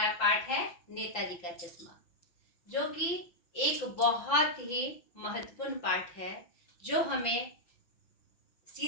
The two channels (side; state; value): right; late; 6.0 ms